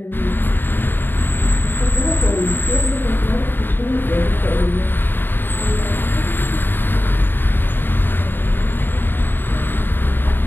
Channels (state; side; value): late; right; 0.096 ms